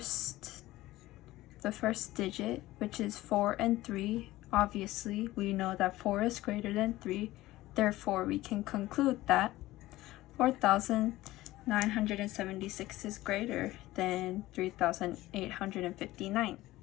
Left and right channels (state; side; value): quieter; right; 17.1 dB